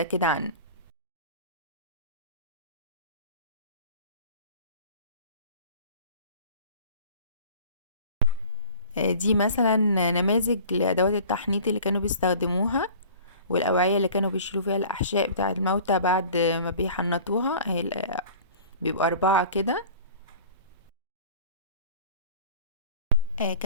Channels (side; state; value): both; inverted; correlation -0.44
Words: كده عنه. دي مثلا نماذج لأدوات التحنيط اللي كانوا بيستخدموها، والأوعية اللي كانوا بيشيلوا فيها الأحشاء بتاعة الموتى بعد ما بيحنطوها. بيبقوا 4 كده.